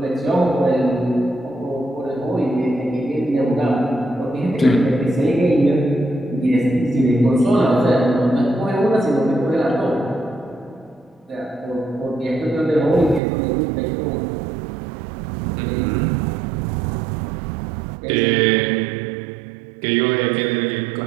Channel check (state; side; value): drops out; left; at 13.2 s